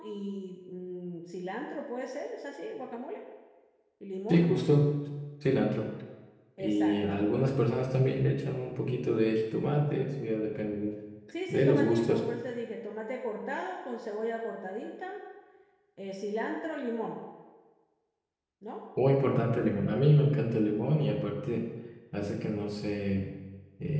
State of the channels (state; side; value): identical; both; correlation 1.00